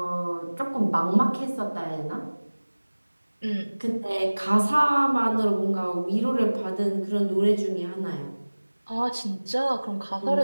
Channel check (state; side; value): inverted; both; correlation -1.00